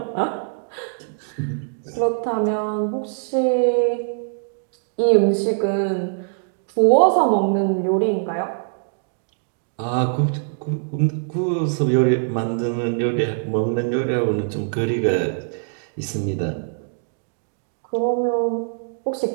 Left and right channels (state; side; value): silent; left; digital silence